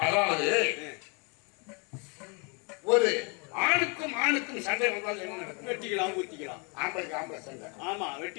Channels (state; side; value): quieter; right; 33.7 dB